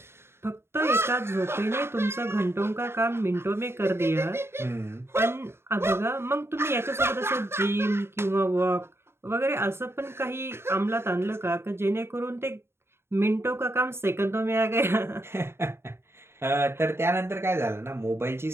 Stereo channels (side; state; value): left; late; 0.12 ms